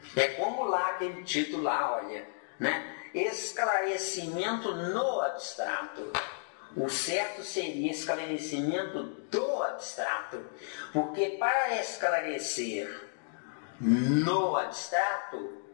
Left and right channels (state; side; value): silent; right; digital silence